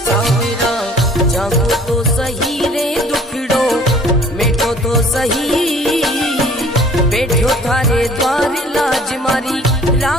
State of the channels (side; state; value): both; normal; correlation 0.52